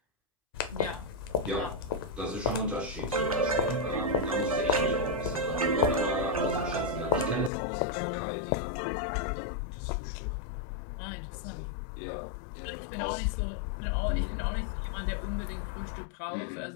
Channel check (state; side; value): drops out; right; at 7.5 s